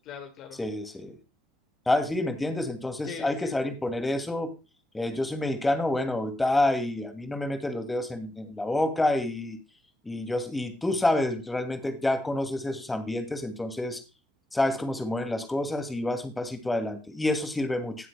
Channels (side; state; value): both; normal; correlation 0.86